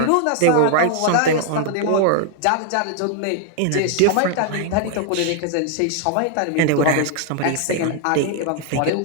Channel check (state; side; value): different; both; correlation 0.00